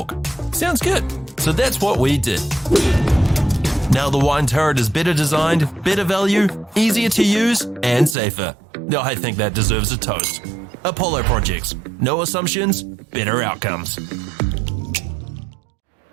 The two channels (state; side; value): drops out; left; at 8.2 s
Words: Sounds good. So that's what we did. Now the wine turret is better designed, better value, easier to use, and safer. I think that deserves a toast. Apollo Projects. No assumptions, better outcomes.